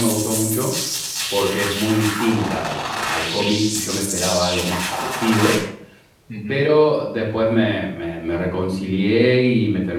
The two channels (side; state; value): both; identical; correlation 1.00